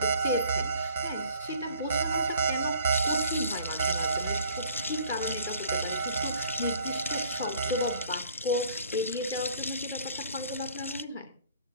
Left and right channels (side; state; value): both; inverted; correlation -0.56